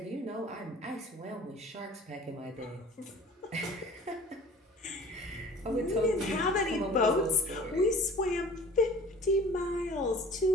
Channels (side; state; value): both; normal; correlation 0.46